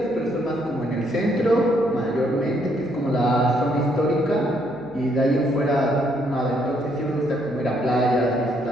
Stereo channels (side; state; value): right; noise; hum, 26 dB below the sound